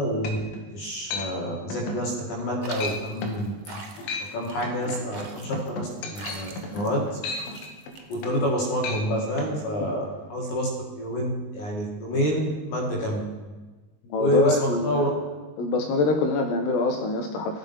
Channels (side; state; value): right; late; 19 ms